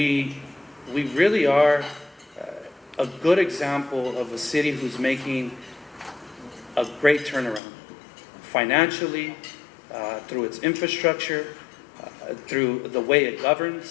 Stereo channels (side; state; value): right; drops out; at 7.6 s